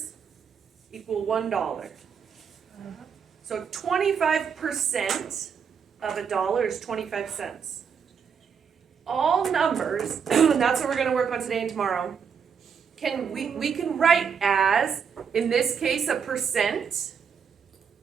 equal $1. So 25% of $1 is 25 cents. All numbers, and that's what we're gonna work on today and tomorrow, we can write as, in this case, a percent,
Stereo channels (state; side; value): quieter; left; 6.8 dB